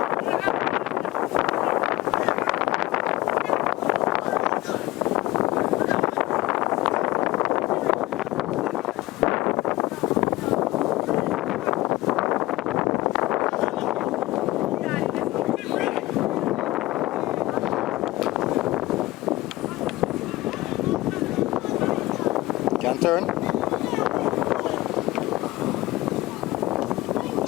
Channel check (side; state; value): right; quieter; 18.6 dB